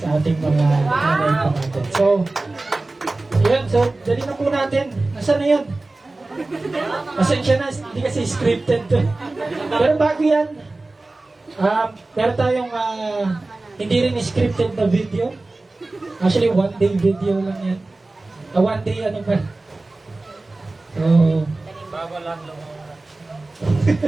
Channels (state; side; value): quieter; left; 3.1 dB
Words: sa ating mga nanay po natin. So, yun. So, dali na po natin. Nasaan na yun? Pasensya na, hindi kasi scripted to. Pero bago yan, meron tayong hindi rin scripted na video. Actually, one day video lang yan. One day ano ba? So,